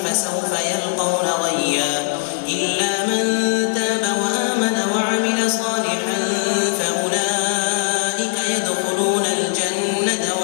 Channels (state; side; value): silent; right; digital silence